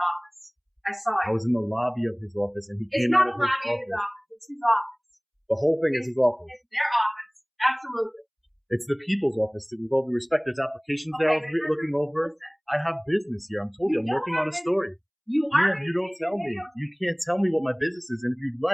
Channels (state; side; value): identical; both; correlation 1.00